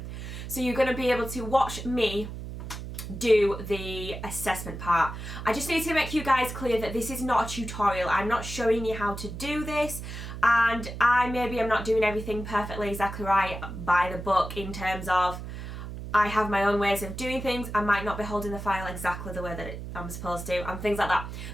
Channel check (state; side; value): noise; right; hum, 9 dB below the sound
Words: So you're going to be able to watch me do the assessment part. I just need to make you guys clear that this is not a tutorial. I'm not showing you how to do this, and maybe I'm not doing everything perfectly exactly right by the book in terms of I have my own ways of doing things. I might not be holding the file exactly the way that I'm supposed to and things like that,